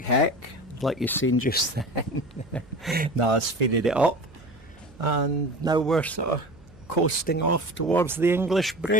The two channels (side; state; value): right; noise; hum, 25 dB below the sound